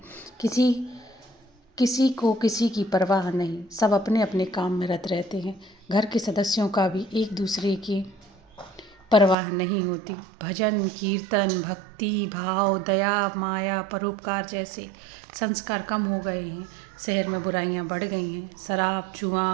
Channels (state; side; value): drops out; left; at 9.3 s